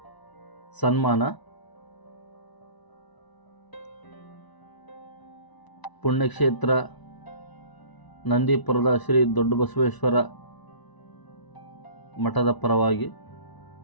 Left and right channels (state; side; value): late; right; 1.0 ms